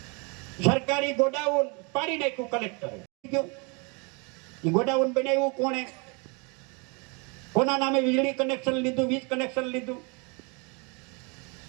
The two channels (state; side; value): quieter; left; 32.0 dB